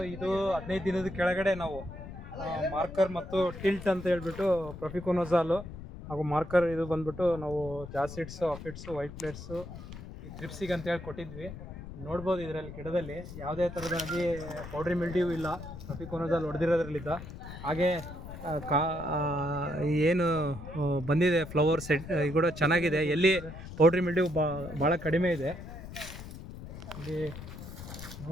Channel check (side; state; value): left; noise; rumble, 12 dB below the sound